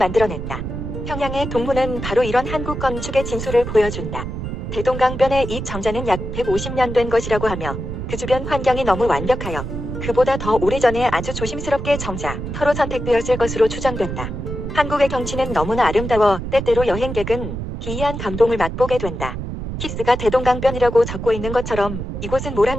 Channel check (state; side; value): noise; right; rumble, 6 dB below the sound